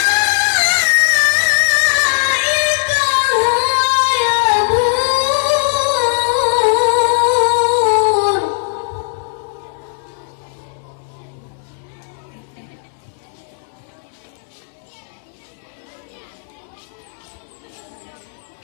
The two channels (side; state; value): right; silent; digital silence